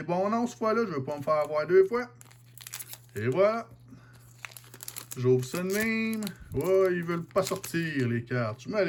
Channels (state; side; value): identical; both; correlation 1.00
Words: bons noms cette fois-là. Je veux pas me faire avoir 2 fois. Et voilà. J'ouvre ça de même. Ouais, ils veulent pas sortir les cartes. Je me